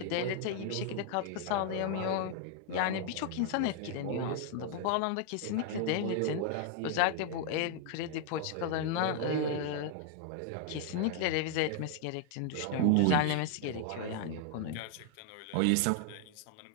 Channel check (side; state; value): both; different; correlation 0.00